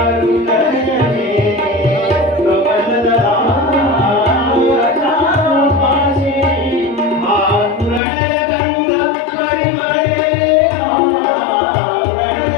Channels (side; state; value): right; drops out; at 8.0 s